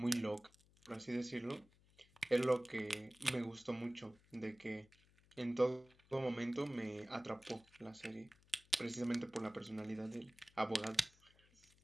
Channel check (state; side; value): noise; left; hum, 29 dB below the sound